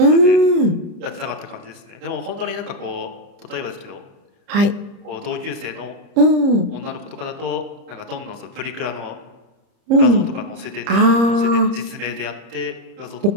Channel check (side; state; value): left; late; 30 ms